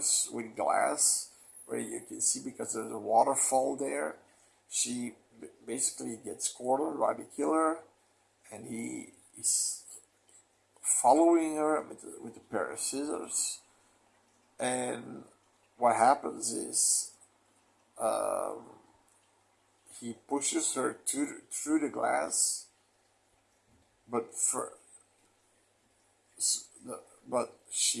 with glass where you can see, because there's a waterfall there. She basically gets cornered by the killer, and he is following her with a pair of scissors. And what happens is he pushes her through the glass, but but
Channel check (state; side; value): identical; both; correlation 1.00